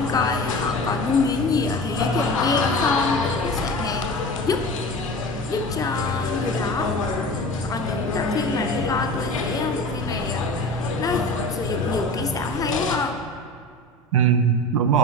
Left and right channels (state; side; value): normal; both; correlation 0.33